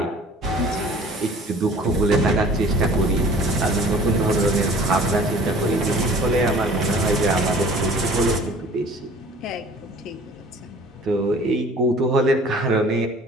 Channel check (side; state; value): both; normal; correlation 0.48